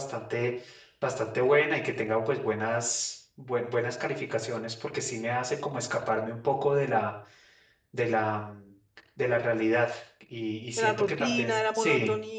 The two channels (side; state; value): both; identical; correlation 1.00